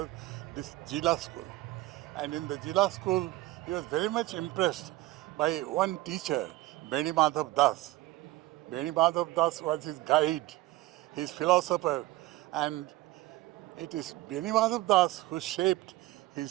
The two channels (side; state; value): left; quieter; 17.7 dB